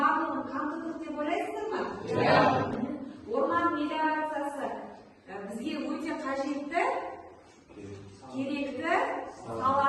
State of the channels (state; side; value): identical; both; correlation 1.00